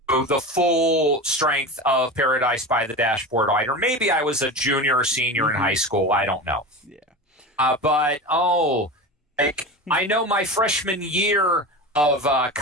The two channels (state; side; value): normal; both; correlation 0.27